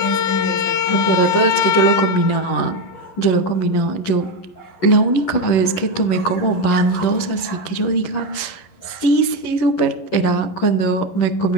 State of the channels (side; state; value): right; late; 11 ms